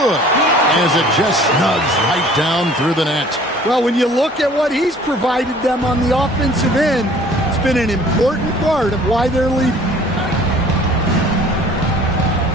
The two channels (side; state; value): both; normal; correlation 0.51